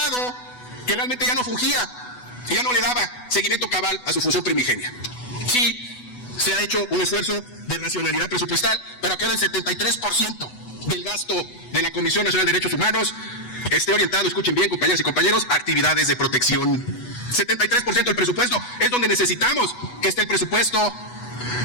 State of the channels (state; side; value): late; right; 8.1 ms